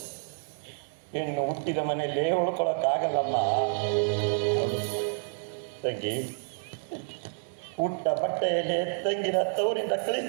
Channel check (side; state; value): left; silent; digital silence